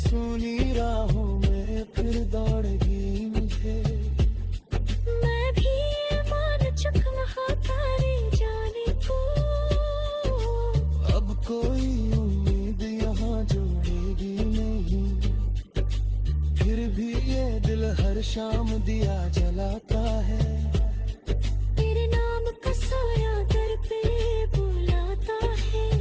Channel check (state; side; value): identical; both; correlation 1.00